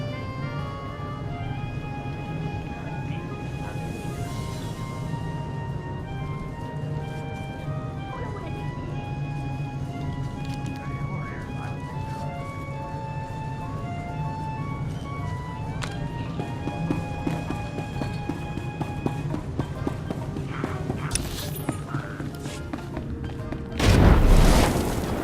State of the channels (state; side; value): identical; both; correlation 1.00